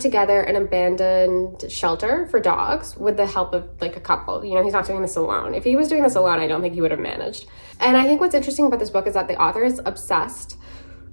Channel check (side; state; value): both; inverted; correlation -1.00